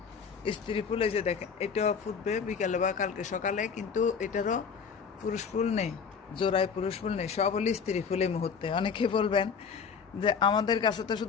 স্ত্রী ফুল, এই যে দেখেন এটাও ফুটবে বিকালে বা কালকে সকালে, কিন্তু এটারও পুরুষ ফুল নেই, জোড়ায় পুরুষ ফুল নেই, সব হলো স্ত্রী ফুল এই মুহূর্তে। অনেকে বলবেন যে আমাদের কাছে তো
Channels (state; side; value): quieter; right; 6.2 dB